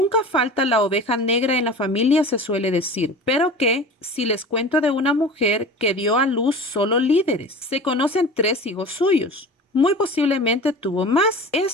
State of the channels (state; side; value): normal; both; correlation 0.37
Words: falta la oveja negra en la familia, se suele decir, pero que si les cuento de una mujer que dio a luz solo líderes. Se conocen 3 hijos suyos. Muy posiblemente tuvo más.